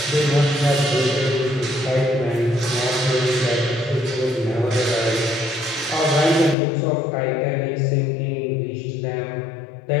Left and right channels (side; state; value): right; drops out; at 6.6 s